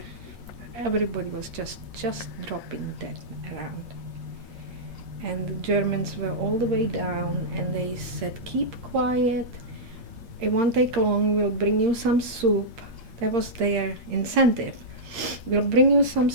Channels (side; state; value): left; late; 8.6 ms